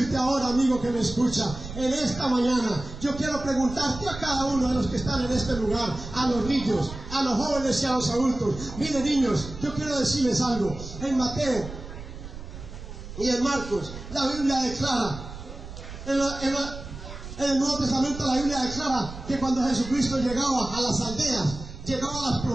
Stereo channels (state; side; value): noise; right; rumble, 12 dB below the sound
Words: ahora, amigo que me escucha, en esta mañana, yo quiero preguntarte a cada uno de los que están en este lugar, a los niños, a los jóvenes y a los adultos. Miren, niños, yo quiero decirles algo. En Mateo y en Marcos, la Biblia declara, en el Nuevo Testamento la Biblia declara que cuando Jesucristo llegaba a las aldeas, llegaba a las